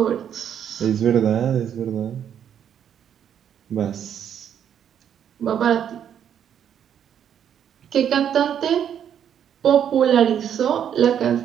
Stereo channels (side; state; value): left; quieter; 9.0 dB